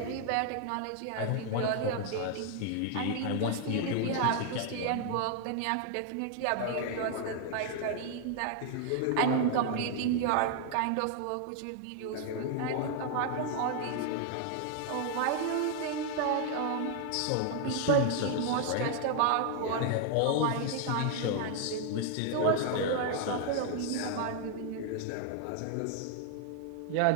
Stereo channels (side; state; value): both; different; correlation 0.00